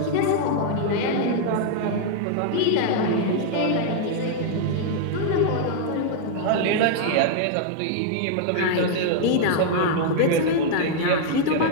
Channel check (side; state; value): both; different; correlation -0.01